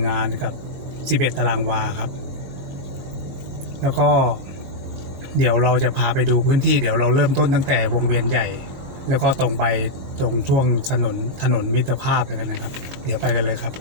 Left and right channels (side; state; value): left; late; 22 ms